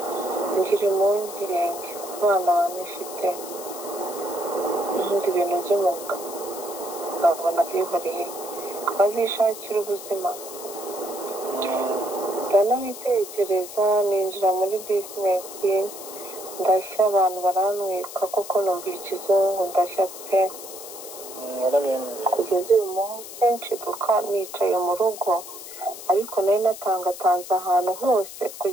ngira impungenge abana banifite ibindi bintu by'umwuga nkabona byihoreye bazishakira ubuzima. ndanabitekereza ninjira muri bizinesi, ndashya. abantu baranwika kuko numva ikizungu, ndashya pe. kugeza uyu munsi nshiduka nicaye mu rugo, ariko nari natangatanze ahantu hose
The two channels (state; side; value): noise; left; hiss, 12 dB below the sound